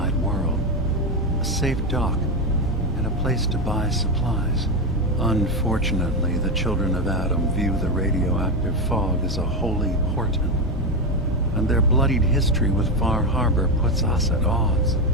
world. A safe dock, and a place to buy supplies. Unfortunately, the children of Adam view the radioactive fog as a holy portent, and their bloodied history with Far Harbor puts us at odds.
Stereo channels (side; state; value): both; normal; correlation 0.12